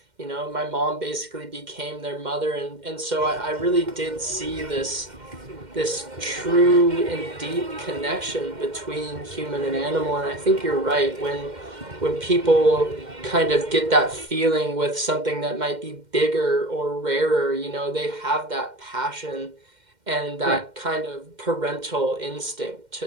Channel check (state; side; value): late; left; 2.1 ms